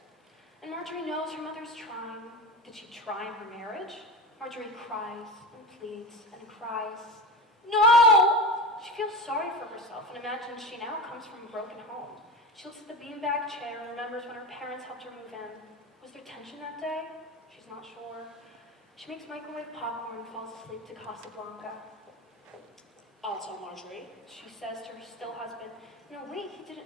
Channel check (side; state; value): both; normal; correlation 0.26